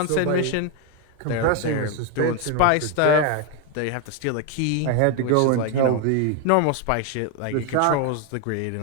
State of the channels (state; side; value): different; both; correlation 0.01